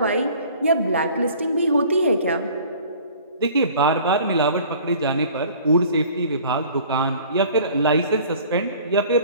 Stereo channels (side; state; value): both; inverted; correlation -0.49